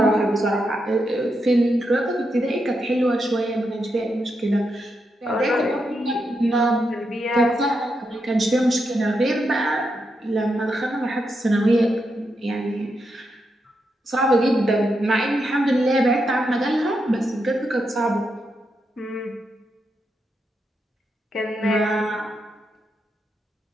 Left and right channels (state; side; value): normal; both; correlation 0.84